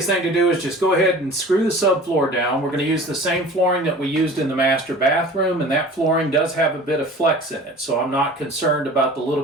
thing to do is just go ahead and screw the subfloor down. We're going to use the same flooring that we used in the master bathroom, and that flooring does have a bit of flex in it, so I'm not concerned about the little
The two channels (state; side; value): normal; both; correlation 0.42